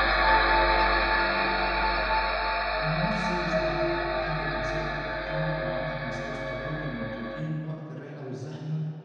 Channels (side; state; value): both; identical; correlation 1.00